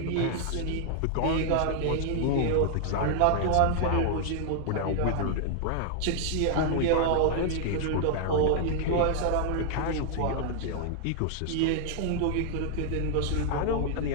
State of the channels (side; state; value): both; different; correlation 0.00